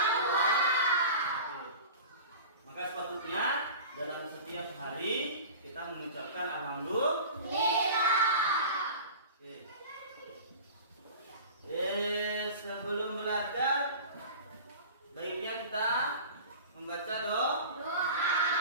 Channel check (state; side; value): inverted; both; correlation -0.37